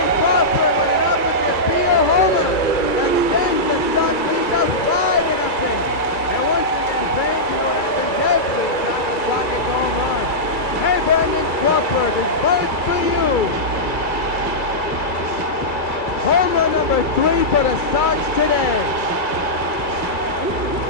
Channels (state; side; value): late; right; 2.3 ms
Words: Crawford with an opposite field homer. Extends the Sox lead to 5-0. And once again, fans, you know what happens every time the Sox gets a home run. Hey, Brandon Crawford, this bird's for you. Home run number 3 for the Sox today.